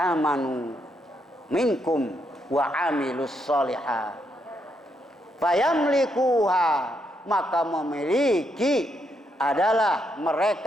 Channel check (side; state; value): both; normal; correlation 0.78